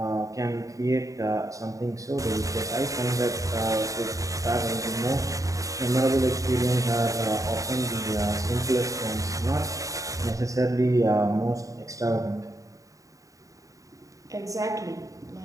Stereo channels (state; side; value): late; left; 0.16 ms